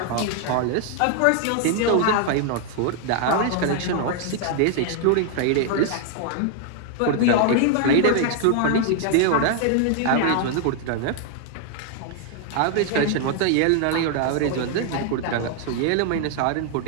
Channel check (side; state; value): both; different; correlation 0.00